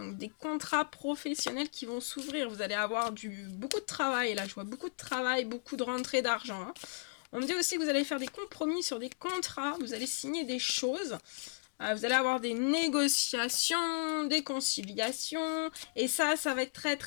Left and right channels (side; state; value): right; silent; digital silence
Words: des contrats professionnels qui vont s'ouvrir. Vous allez avoir beaucoup de travail. Là, je vois beaucoup de travail, beaucoup de rentrée d'argent. Hein. On me dit aussi que vous allez faire des compromis sur des contrats. Vous allez signer des choses. Vous allez avoir des négociations, des conciliations. Et ça va être très